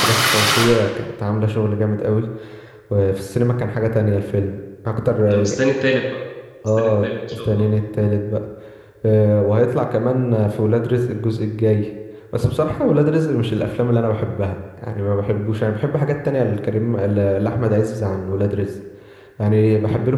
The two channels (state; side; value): identical; both; correlation 1.00